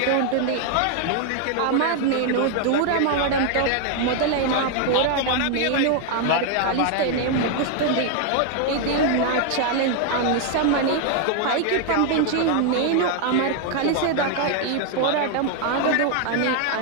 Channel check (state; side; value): different; both; correlation 0.00